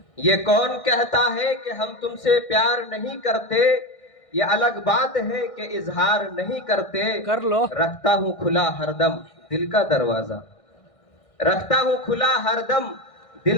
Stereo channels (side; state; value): right; late; 1.6 ms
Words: ये कौन कहता है कि हम तुमसे प्यार नहीं करते? ये अलग बात है कि इजहार नहीं करते। कर लो। रखता हूँ खुला हरदम दिल का दरवाजा, रखता हूँ खुला हरदम